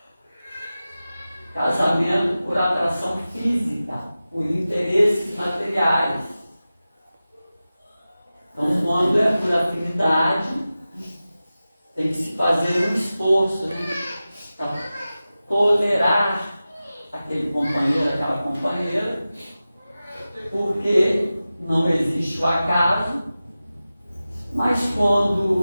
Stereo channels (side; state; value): both; inverted; correlation -0.95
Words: Casamento por atração física, por interesses materiais. Então, quando é por afinidade, tem que se fazer um esforço, para tolerar aquele companheiro, aquela companheira, porque não existe o acaso, mas